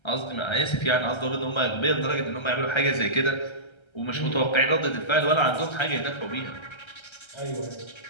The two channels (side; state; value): right; late; 1.3 ms